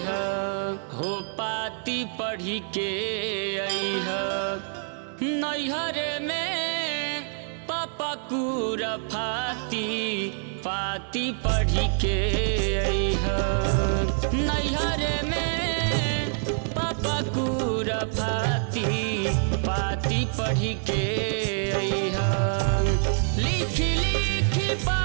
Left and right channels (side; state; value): left; silent; digital silence